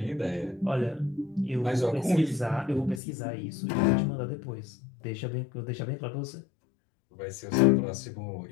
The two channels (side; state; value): right; drops out; at 3.0 s